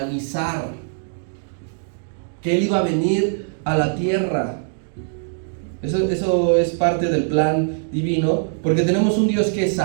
que Él iba a venir a la tierra. Eso es parte del plan divino, porque tenemos un Dios que es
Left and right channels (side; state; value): left; silent; digital silence